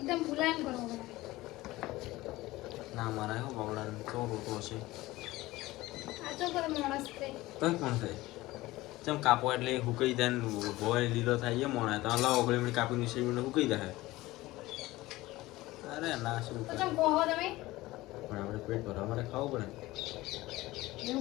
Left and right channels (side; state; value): right; quieter; 18.6 dB